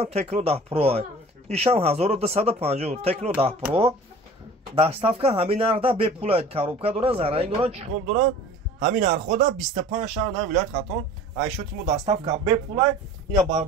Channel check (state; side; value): normal; both; correlation 0.44